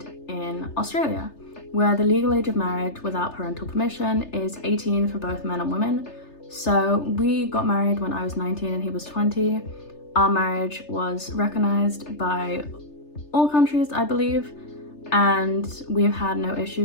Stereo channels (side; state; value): right; late; 3.3 ms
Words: in Australia, where the legal age of marriage without parental permission is 18 for both men and women. So we got married when I was 19 and he was 20. Our marriage was recognized by all countries, I believe, and we've had no